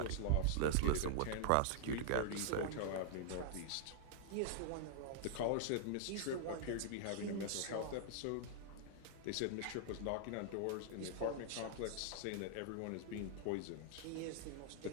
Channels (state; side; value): different; both; correlation -0.01